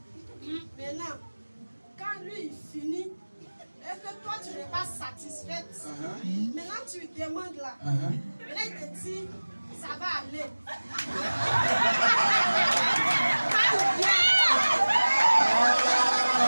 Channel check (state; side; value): inverted; both; correlation -1.00